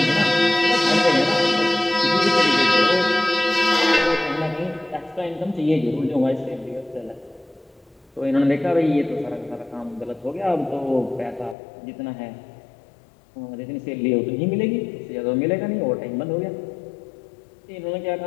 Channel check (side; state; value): right; drops out; at 11.6 s